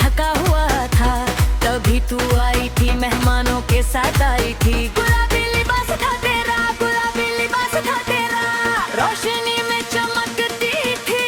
थका हुआ था, तभी तू आई थी, मेहमानों के साथ आई थी। गुलाबी लिबास था तेरा, गुलाबी लिबास था तेरा, रोशनी में चमकती थी,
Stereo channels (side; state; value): both; identical; correlation 1.00